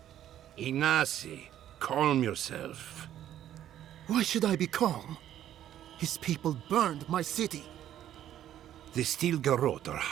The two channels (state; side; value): quieter; left; 11.5 dB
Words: Ignacy, calm yourself. Why should I be calm? His people burned my city. The Steel Garrote are